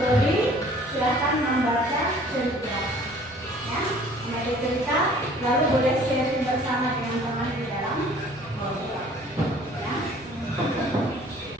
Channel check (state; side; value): normal; both; correlation 0.52